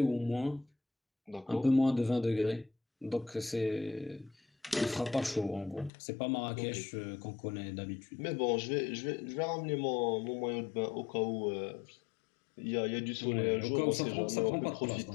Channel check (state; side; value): drops out; right; at 5.9 s